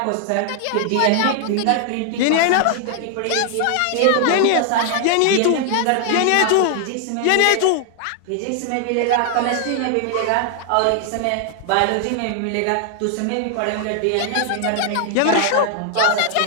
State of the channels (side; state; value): both; different; correlation 0.00